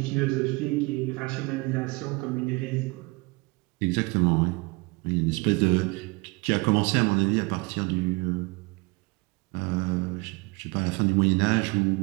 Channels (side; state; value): left; quieter; 26.8 dB